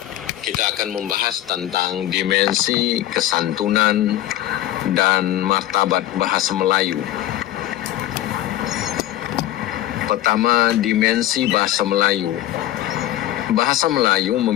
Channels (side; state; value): right; quieter; 13.8 dB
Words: Kita akan membahas tentang dimensi kesantunan dan martabat bahasa Melayu. Pertama, dimensi bahasa Melayu. Bahasa Melayu